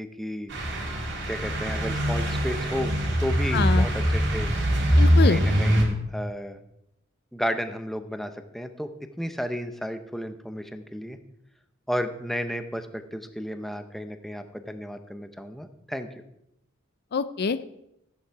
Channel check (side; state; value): both; normal; correlation 0.84